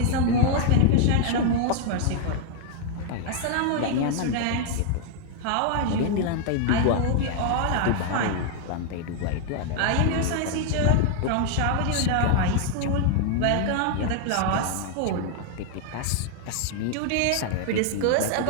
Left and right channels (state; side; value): different; both; correlation 0.00